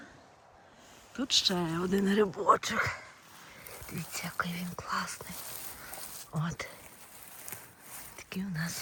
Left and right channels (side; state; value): both; identical; correlation 1.00